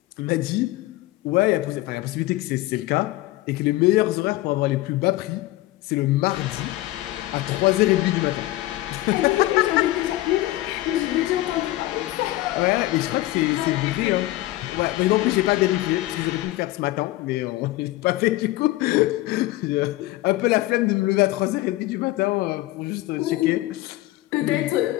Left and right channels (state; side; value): quieter; right; 17.4 dB